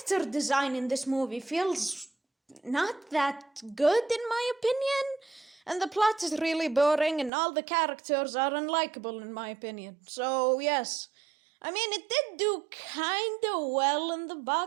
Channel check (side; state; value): left; drops out; at 7.3 s